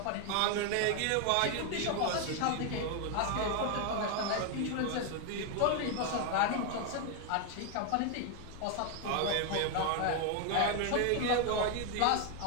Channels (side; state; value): both; different; correlation 0.01